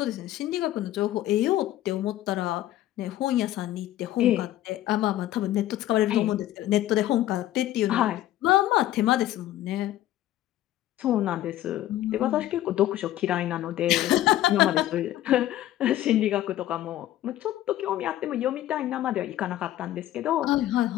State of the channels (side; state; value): right; quieter; 13.9 dB